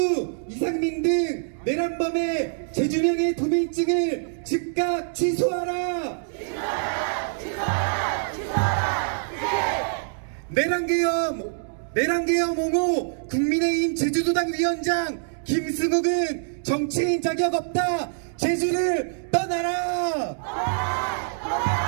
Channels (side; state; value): left; silent; digital silence